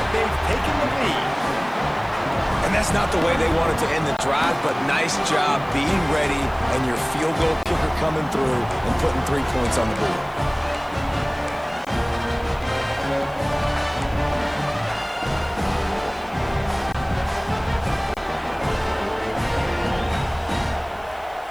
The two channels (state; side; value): noise; left; hiss, 27 dB below the sound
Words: they've taken the lead. And that's not the way they wanted to end the drive, but nice job being ready and your field goal kicker coming through and putting 3 points on the board.